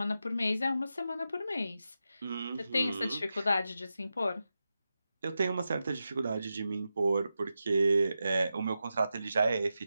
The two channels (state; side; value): inverted; both; correlation -0.90